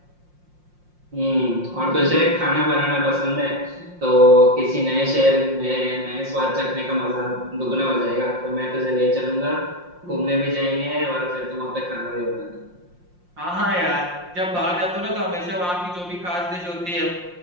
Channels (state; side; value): late; left; 5.6 ms